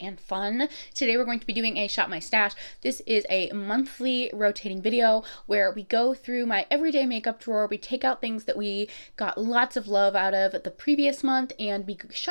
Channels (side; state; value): both; inverted; correlation -1.00